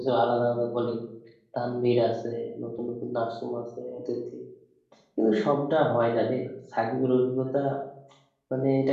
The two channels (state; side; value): identical; both; correlation 1.00